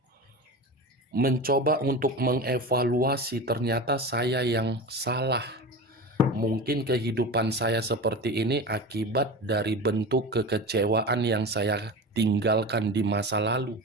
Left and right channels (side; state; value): both; normal; correlation 0.29